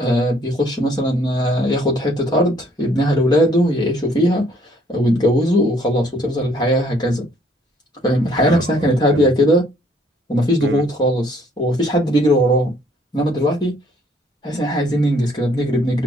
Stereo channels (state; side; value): normal; both; correlation 0.63